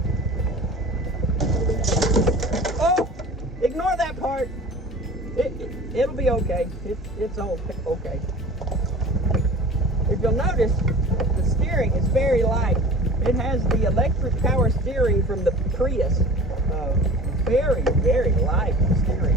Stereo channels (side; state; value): both; normal; correlation 0.40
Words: Oh, ignore that part. It'll be okay. It's all okay. If you'll notice, the steering is very light. It has the electric power steering from the Prius. Very, very light steering.